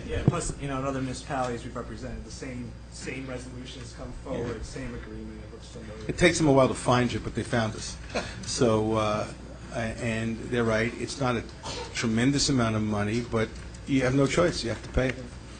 Plus, in other municipalities we've represented, the same resolutions come forward, same agreement. It looks familiar. It takes them a while to find you, but they found us. So, and they're right. It's not a tremendous amount of money, but you have no choice. You have to pay it.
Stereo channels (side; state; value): both; identical; correlation 1.00